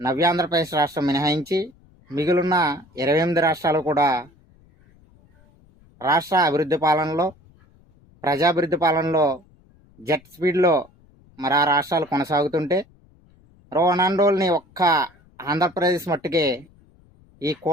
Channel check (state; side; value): noise; left; rumble, 29 dB below the sound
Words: ఆంధ్రప్రదేశ్ రాష్ట్రం మినహాయించి మిగిలిన 28 రాష్ట్రాలు కూడా రాష్ట్ర అభివృద్ధి పాలనలో ప్రజాభివృద్ధి పాలనలో జెట్ స్పీడ్లో మరి ఆ రాష్ట్రాలు కొనసాగుతుంటే రోనాండోల్ని ఒక్క ఆంధ్రప్రదేశ్ మట్టుకే ఈ